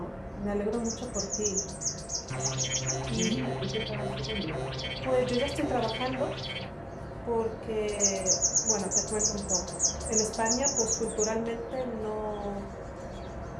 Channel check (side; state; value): both; identical; correlation 1.00